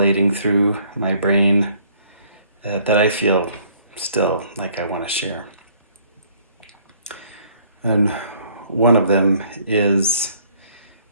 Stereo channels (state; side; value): inverted; both; correlation -0.61